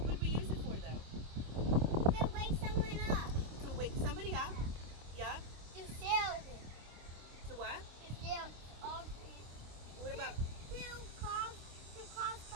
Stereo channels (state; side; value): late; left; 25 ms